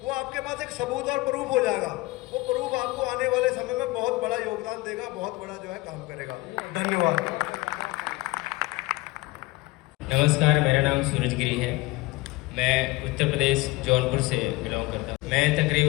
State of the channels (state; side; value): quieter; right; 21.2 dB